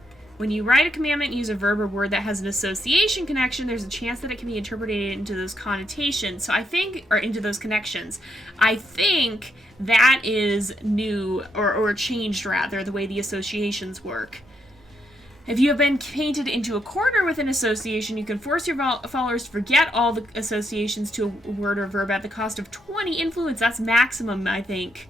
when you write a commandment and use a verb or word that has an association connection, there's a chance that it can be interpreted into those connotations. So I think, or into those connections. I think that is new, or changed rather, the way the associations work. If you have been painted into a corner with an association, you can force your followers to forget all the associations to a word or verb at the cost of 20 influence. That's maximum, I think.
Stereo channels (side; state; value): both; normal; correlation 0.78